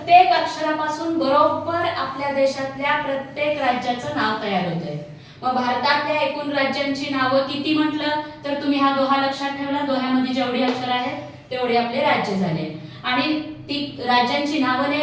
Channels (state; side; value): identical; both; correlation 1.00